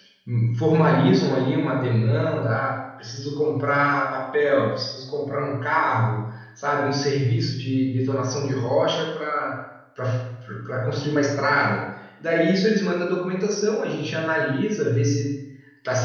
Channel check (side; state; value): both; identical; correlation 1.00